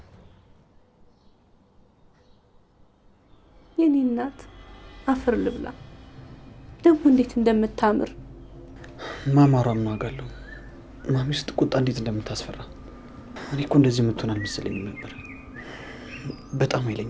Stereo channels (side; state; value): both; identical; correlation 1.00